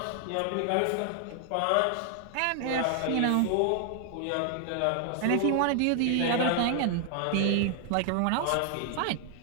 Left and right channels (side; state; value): both; different; correlation 0.00